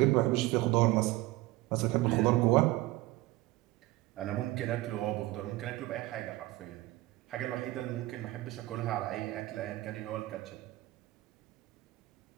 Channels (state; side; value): quieter; left; 18.6 dB